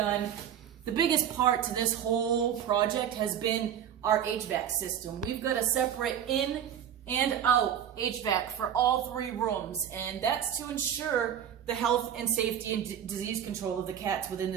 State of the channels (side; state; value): left; quieter; 9.4 dB